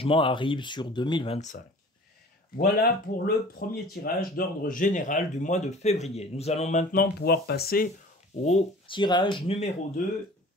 arrive sur 2025. Voilà pour le premier tirage d'ordre général du mois de février. Nous allons maintenant pouvoir passer au tirage numéro 2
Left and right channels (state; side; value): normal; both; correlation 0.45